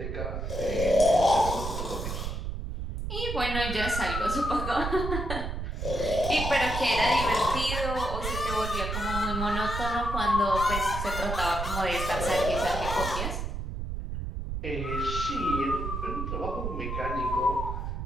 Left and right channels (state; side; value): noise; right; rumble, 4 dB below the sound